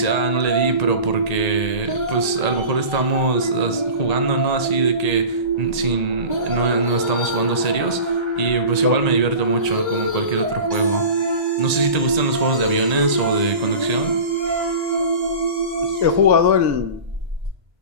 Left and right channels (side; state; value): left; late; 1.8 ms